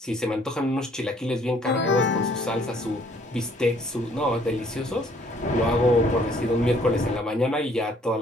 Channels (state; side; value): normal; both; correlation 0.62